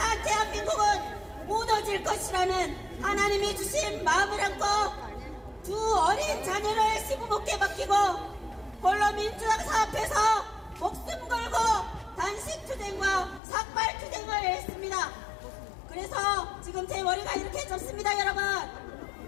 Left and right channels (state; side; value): drops out; right; at 13.4 s